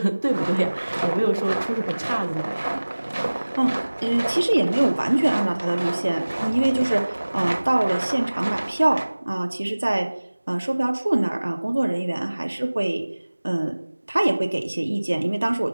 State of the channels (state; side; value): inverted; both; correlation -1.00